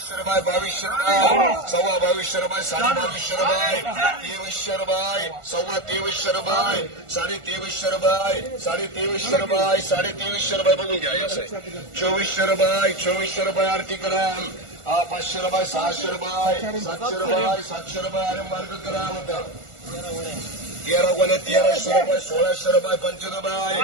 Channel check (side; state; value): left; late; 1.4 ms